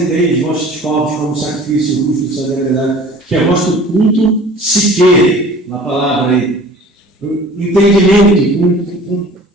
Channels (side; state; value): both; normal; correlation 0.46